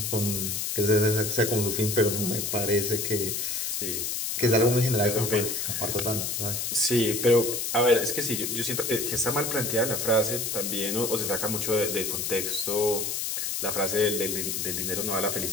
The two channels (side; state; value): left; noise; hiss, 2 dB below the sound